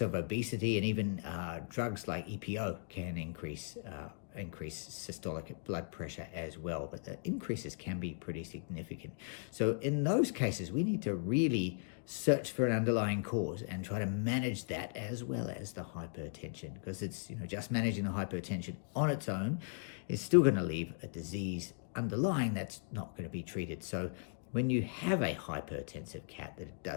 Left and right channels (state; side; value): silent; right; digital silence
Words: of obesity and even drugs like EPO can increase systolic blood pressure as well, but the increases can be pretty significant. So in those cases, we need to really search for an underlying cause and try to manage that as well as the hypertension, because it's just managing the hypertension on its own is still going to leave a disease underlying that's not going to be treated. So when you have a hypertensive cat that